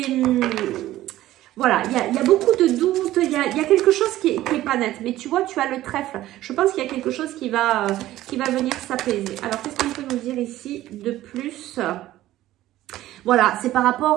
Voilà, il y a beaucoup de doutes, il y a quelque chose qui est pas net. Mais tu vois, tu as le trèfle. Je pense qu'il y a quelque chose qui va venir s'apaiser. Alors, qu'est-ce qu'on peut nous dire ici de plus? Voilà, c'est par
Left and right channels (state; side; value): quieter; left; 14.8 dB